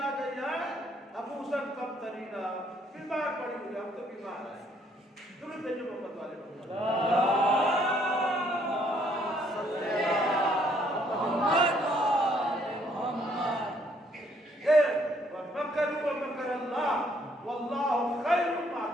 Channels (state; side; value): normal; both; correlation 0.66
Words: گئی ہے، ابو سب کم ترینا، بیمار پڑی ہوئی، ہم تو بیمار ہیں، درود بھیجو محمد والے وَمَكَرُوا وَمَكَرَ اللَّهُ وَاللَّهُ خَيْرُ